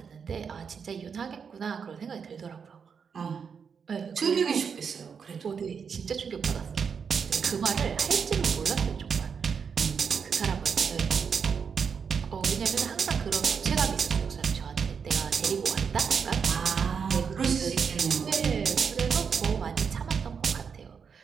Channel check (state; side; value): quieter; left; 6.4 dB